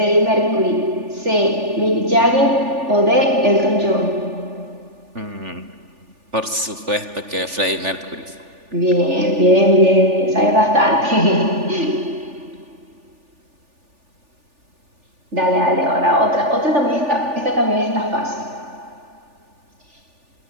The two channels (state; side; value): late; left; 3.4 ms